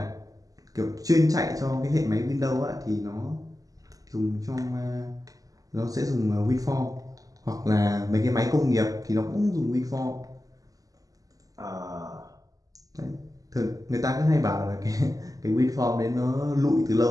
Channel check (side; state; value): left; late; 0.17 ms